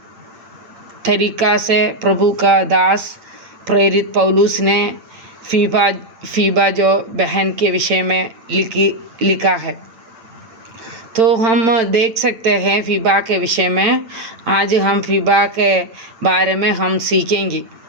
तरीका से प्रभु का दास प्रेरित पौलुस ने फीबा जो बहन के विषय में लिखा है। तो हम देख सकते हैं फीबा के विषय में। आज हम फीबा के बारे में हम सीखेंगे।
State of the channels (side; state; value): left; late; 8.8 ms